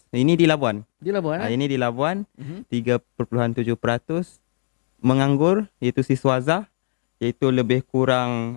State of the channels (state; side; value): silent; right; 61 dB below the other